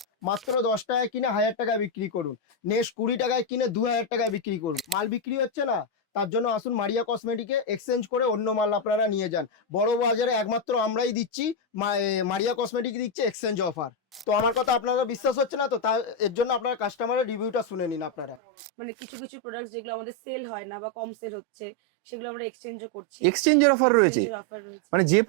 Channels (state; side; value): drops out; left; at 18.4 s